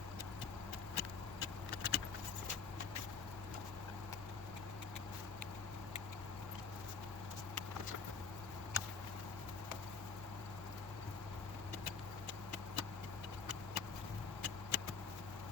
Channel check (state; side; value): quieter; right; 5.4 dB